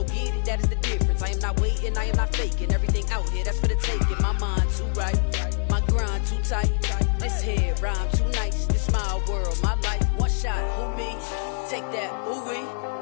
get it. That is the difference. I am not waiting. I am not faking. Everything out here, that's for the taking. My mind too right. My grind too tight. This head rhyme too nice. This my world, my life. One shot, who me? Take that, ooh wee.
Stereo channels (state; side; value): silent; right; digital silence